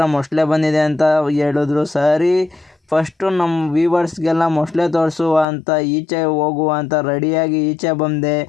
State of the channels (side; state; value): right; drops out; at 5.5 s